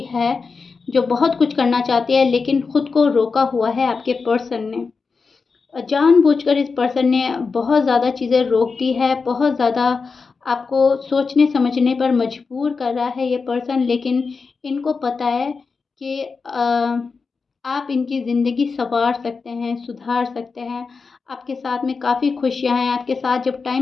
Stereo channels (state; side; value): quieter; right; 4.7 dB